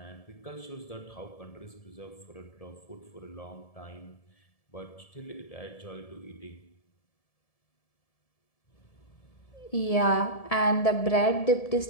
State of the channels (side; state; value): right; late; 1.7 ms